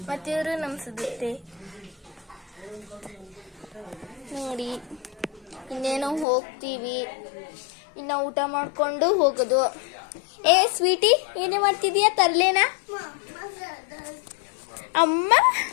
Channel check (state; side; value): drops out; right; at 6.2 s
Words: ಮತ್ತು ಇವರು ನಮ್ಮ ಸುಧತ್ತೆ ನೋಡಿ. ಇನ್ನೇನೋ ಹೋಗ್ತೀವಿ. ಇನ್ನು ಊಟ ಮಾಡ್ಕೊಂಡು ಹೋಗೋದು. ಸ್ವೀಟಿ, ಏನೇ ಮಾಡ್ತಿದೀಯ? ತರ್ಲೇನಾ? ಅಮ್ಮ